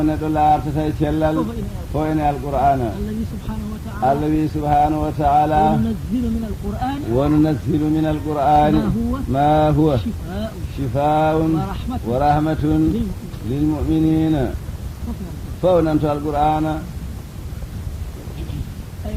neɗɗo laartata e cellal fo ene alqur'ana allah wi subhanahu wa taala وننزل من القرآن ما هو شفاء ورحمة للمؤمنين فونمت القرآن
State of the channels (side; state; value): both; identical; correlation 1.00